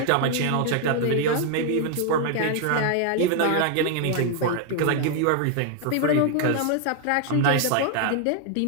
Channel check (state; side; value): different; both; correlation 0.00